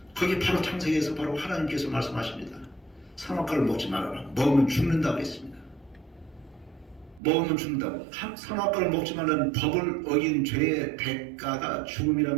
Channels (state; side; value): drops out; left; at 7.2 s